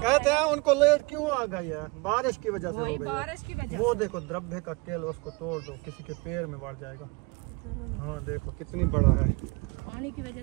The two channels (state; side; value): quieter; left; 25.8 dB